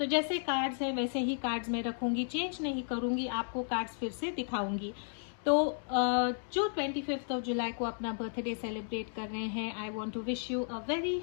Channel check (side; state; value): right; silent; digital silence